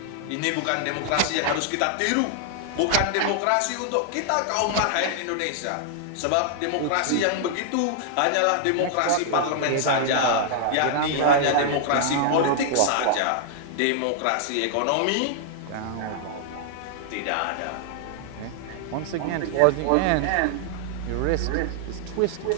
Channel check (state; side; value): different; both; correlation -0.01